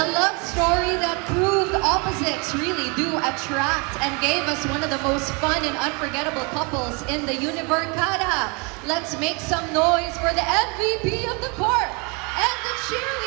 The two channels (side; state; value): left; quieter; 31.3 dB